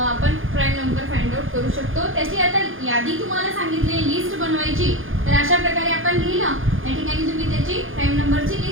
प्राईम नंबर फाइंड आउट करू शकतो. त्याची आता यादी तुम्हाला सांगितली, लिस्ट बनवायची. तर अशा प्रकारे आपण लिहिलं, या ठिकाणी तुम्ही त्याची प्राईम नंबरची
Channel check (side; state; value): left; late; 0.59 ms